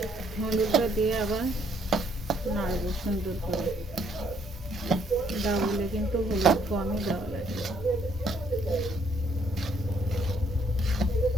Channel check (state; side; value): normal; both; correlation 0.67